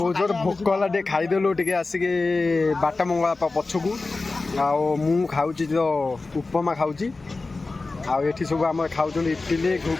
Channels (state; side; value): quieter; right; 3.6 dB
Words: ଜୋର ଭୋକ ହେଲା, ଟିକେ ଖାଇଦେଲୁ ଟିକେ ଆସିକି ବାଟ ମଙ୍ଗଳା ପଛକୁ। ଆଉ ମୁଁ ଖାଉଛି ତ ଉପମା ଖାଉଛି। ଆଉ ଏଠି ସବୁ ଆମର ଖାଉଛନ୍ତି ଇଟିଲି